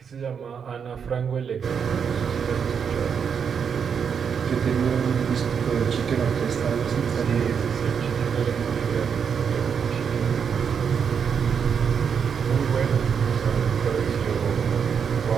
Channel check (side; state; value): left; quieter; 6.9 dB